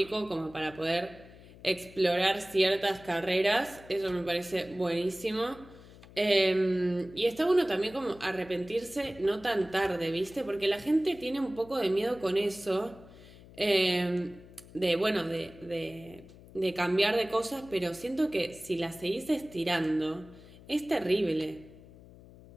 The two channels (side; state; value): left; noise; hum, 20 dB below the sound